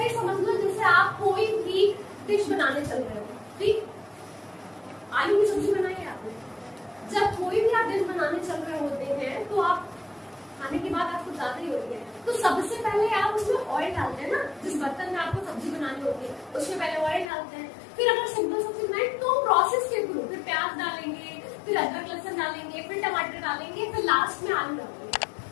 समझ लो जैसे आप कोई भी डिश बनाने चल रहे हो। ठीक, आलू की सब्जी बनाई है आपने, जब कोई भी आप डिश बनाने चल रहे होते हैं तो आप खाने की बात आपको ज्यादा ही होती है, तो सबसे पहले आप उसमें ऑयल डालते हैं ना। जिस बर्तन में आपको सब्जी बनानी होती है उसमें पहले ऑयल डालते हैं। फिर अगर सिंपल सब्जी बनाए तो प्रोसेस के थ्रू फिर प्याज डालेंगे, फिर अदरक लहसुन डालेंगे, फिर टमाटर डालेंगे, फिर लास्ट में आलू डालेंगे,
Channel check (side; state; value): right; drops out; at 17.2 s